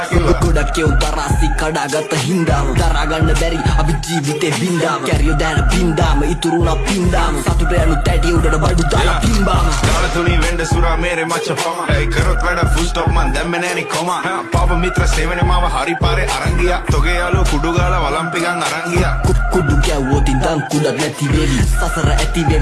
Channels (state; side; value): identical; both; correlation 1.00